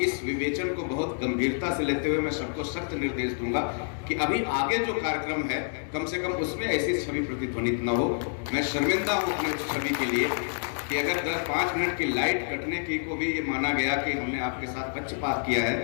इस विवेचन को बहुत गंभीरता से लेते हुए मैं सबको सख्त निर्देश दूंगा कि अभी आगे जो कार्यक्रम है कम से कम उसमें ऐसी छवि प्रतिध्वनित न हो। मैं शर्मिंदा हूं अपने उस छवि के लिए कि अगर 10-5 मिनट की लाइट कटने की को भी ये माना गया कि हमने आपके साथ पक्षपात किया है,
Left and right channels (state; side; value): silent; right; 56 dB below the other